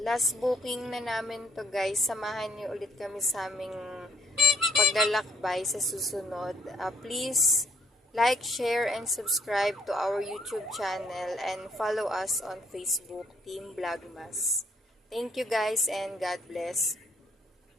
Last booking na namin to guys. Samahan niyo ulit kami sa aming paglalakbay sa susunod. Please like, share, and subscribe to our YouTube channel and follow us on Facebook, Team Vlogmas. Thank you guys and God bless.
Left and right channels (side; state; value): both; normal; correlation 0.65